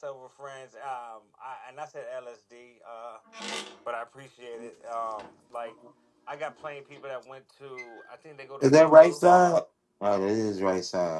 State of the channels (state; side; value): identical; both; correlation 1.00